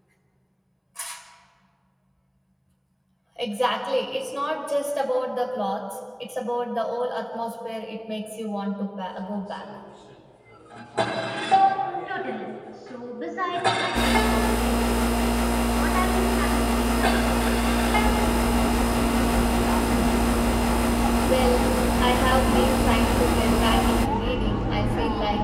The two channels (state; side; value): identical; both; correlation 1.00